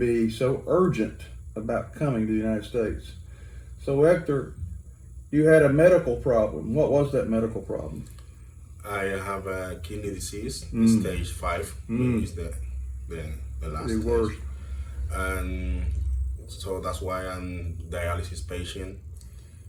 so urgent about coming to the United States. So Hector, you had a medical problem. What was that medical problem? I have a kidney disease, stage 5, is the last The stage. worst. And so that's why I'm dialysis patient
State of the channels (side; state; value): both; identical; correlation 1.00